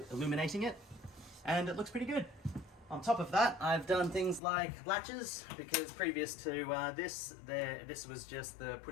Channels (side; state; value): right; drops out; at 4.4 s